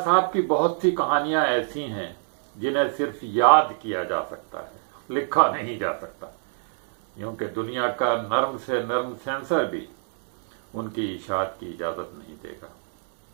صاحب کی بہت سی کہانیاں ایسی ہیں جنہیں صرف یاد کیا جا سکتا ہے، لکھا نہیں جا سکتا، کیونکہ دنیا کا نرم سے نرم سینسر بھی ان کی اشاعت کی اجازت نہیں دے گا۔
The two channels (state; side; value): silent; left; 62 dB below the other